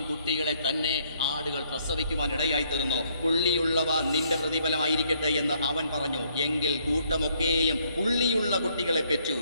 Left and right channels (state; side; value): inverted; both; correlation -0.69